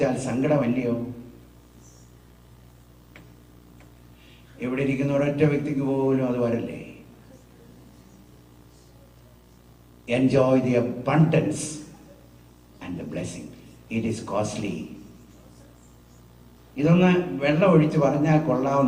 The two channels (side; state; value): both; identical; correlation 1.00